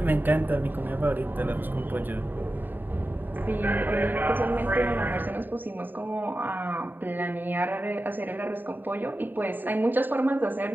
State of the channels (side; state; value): left; late; 0.091 ms